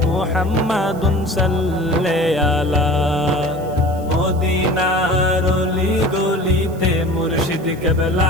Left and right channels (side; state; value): right; noise; hiss, 24 dB below the sound